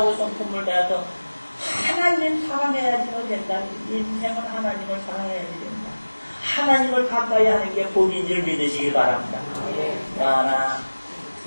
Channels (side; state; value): both; inverted; correlation -1.00